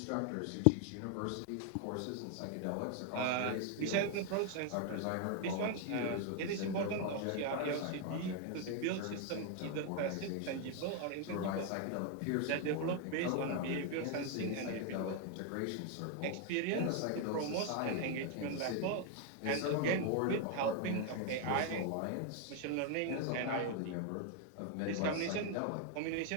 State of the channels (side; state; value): both; different; correlation 0.01